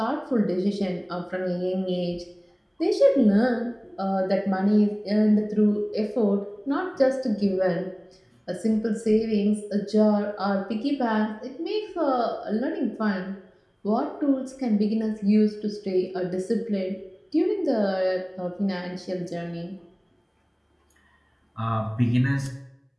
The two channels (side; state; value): both; identical; correlation 1.00